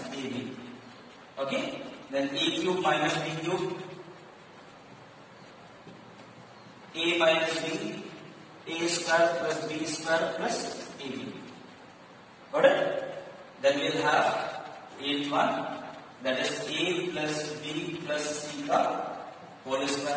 ab. Okay, then a cube minus b cube, a minus b, a square plus b square plus ab. Got it? Then we will have eighth one, that is a plus b plus c ka whole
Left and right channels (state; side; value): identical; both; correlation 1.00